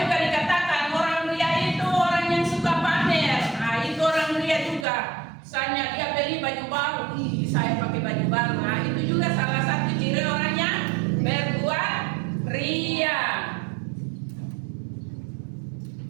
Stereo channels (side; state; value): left; drops out; at 4.9 s